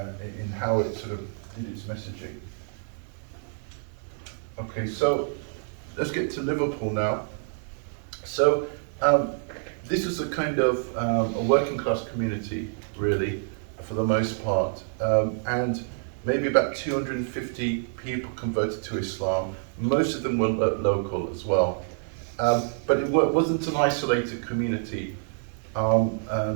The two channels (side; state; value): left; silent; 60 dB below the other